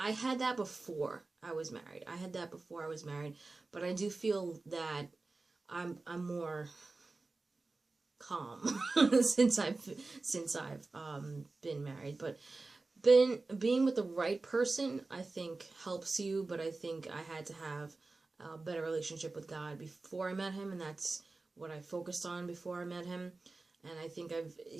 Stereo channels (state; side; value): quieter; left; 3.5 dB